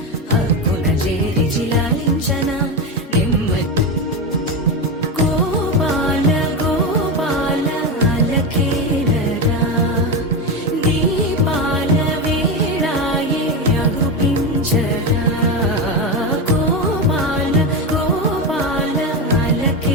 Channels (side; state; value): both; normal; correlation 0.16